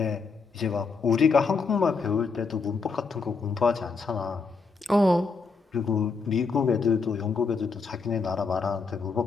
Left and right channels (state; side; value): quieter; right; 4.7 dB